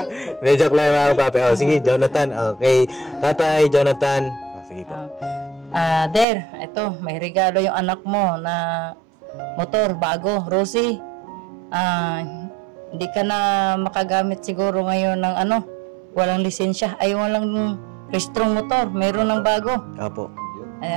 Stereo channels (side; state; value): left; drops out; at 6.2 s